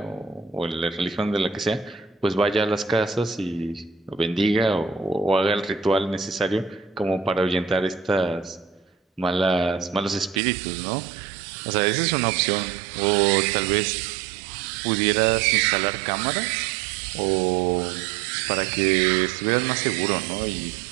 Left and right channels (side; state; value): left; drops out; at 10.4 s